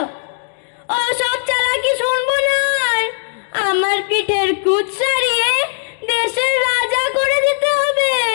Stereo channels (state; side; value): silent; right; digital silence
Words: ও সব চালাকি শুনবো না আর। আমার পিঠের কুচ সারিয়ে দেশের রাজা করে দিতে হবে।